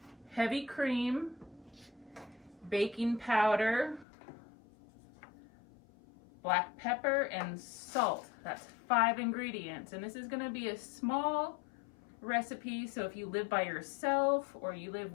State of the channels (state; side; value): drops out; right; at 4.0 s